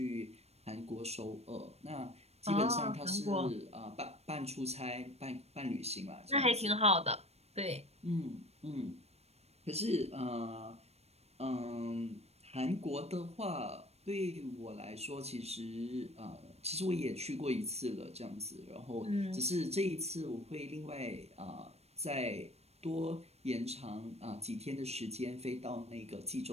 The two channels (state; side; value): late; left; 0.31 ms